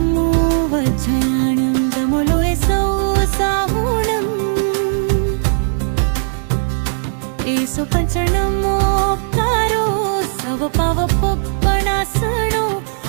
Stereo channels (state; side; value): silent; left; digital silence